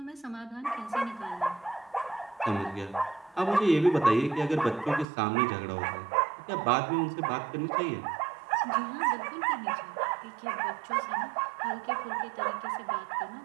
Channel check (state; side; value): drops out; left; at 5.1 s